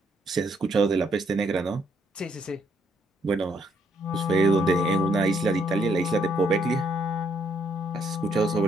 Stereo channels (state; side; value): normal; both; correlation 0.71